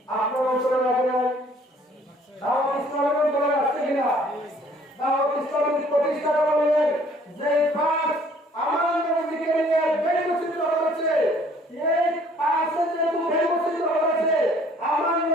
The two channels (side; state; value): both; normal; correlation 0.58